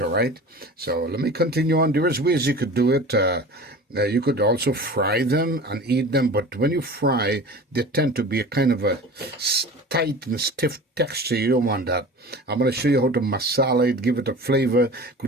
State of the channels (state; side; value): normal; both; correlation 0.37